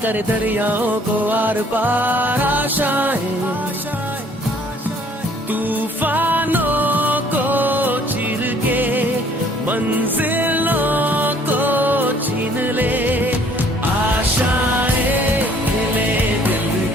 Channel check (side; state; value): both; normal; correlation 0.59